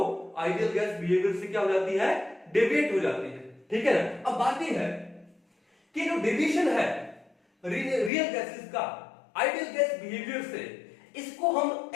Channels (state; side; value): drops out; right; at 8.1 s